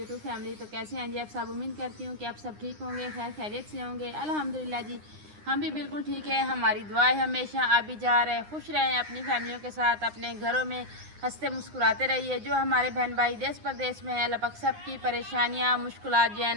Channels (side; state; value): left; late; 9.7 ms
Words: फैमिली। तो कैसे हैं जी आप सब? उम्मीद करती हूँ कि आप सब ठीक होंगे, खैर खैरियत से होंगे। अल्हम्दुलिल्लाह जी हम भी बिल्कुल ठीक है। हमारी दुआ है हमेशा आप भी जा रहे खुश रहें अपनी फैमिलियों के साथ, अपने घरों में हंसते मुस्कुराते रहिए। जो हमारे बहन भाई देश प्रदेश में है, अल्लाह पाक सब की परेशानियाँ मुश्किलात जो है